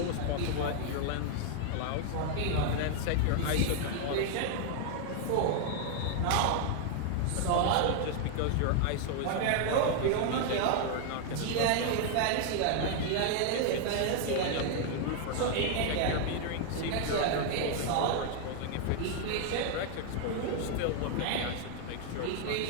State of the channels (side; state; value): both; different; correlation 0.00